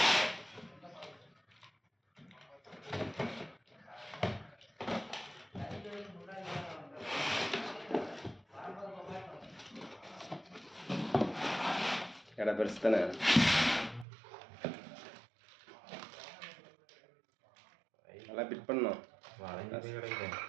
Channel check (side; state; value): left; drops out; at 14.1 s